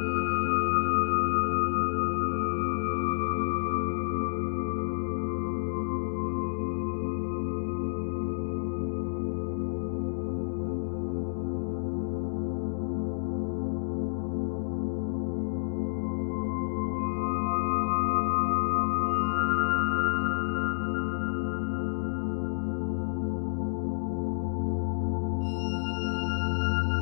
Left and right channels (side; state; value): right; silent; digital silence